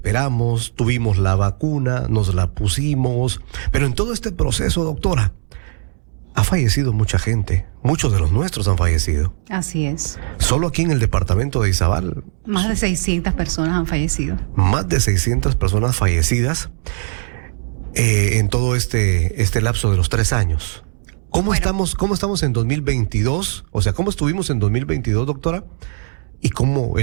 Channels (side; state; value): left; silent; 67 dB below the other